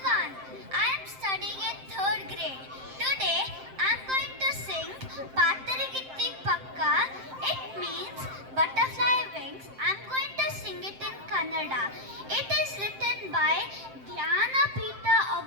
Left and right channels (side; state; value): left; late; 7.6 ms